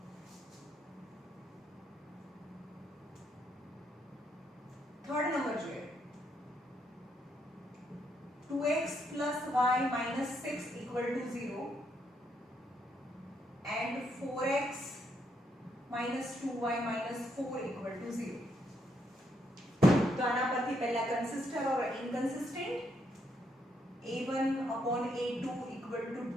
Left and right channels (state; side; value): normal; both; correlation 0.76